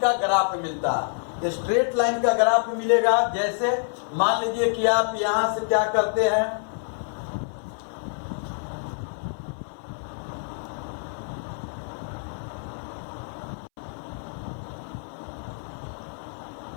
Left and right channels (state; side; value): silent; right; 60 dB below the other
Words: ग्राफ मिलता है। स्ट्रेट लाइन का ग्राफ मिलेगा, जैसे मान लीजिए कि आप यहां से क्या करते हैं,